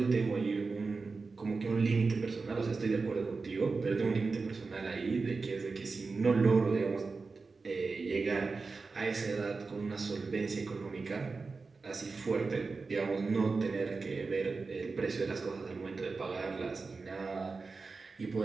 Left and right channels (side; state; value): left; quieter; 4.2 dB